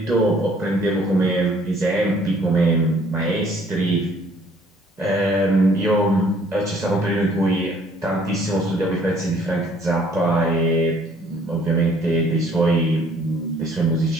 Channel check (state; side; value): normal; both; correlation 0.60